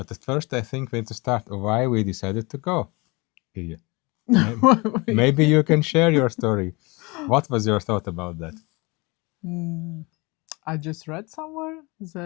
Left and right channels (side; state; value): right; quieter; 26.3 dB